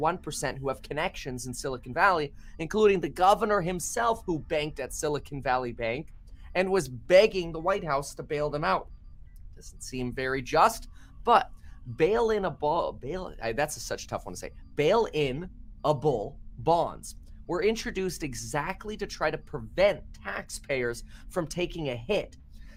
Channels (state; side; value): identical; both; correlation 1.00